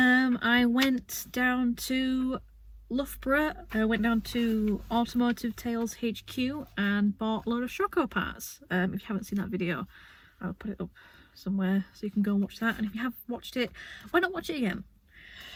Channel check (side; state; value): both; identical; correlation 1.00